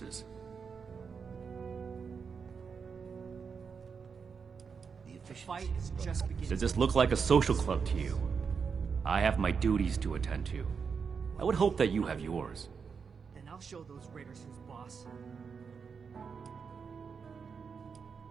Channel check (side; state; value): left; quieter; 5.9 dB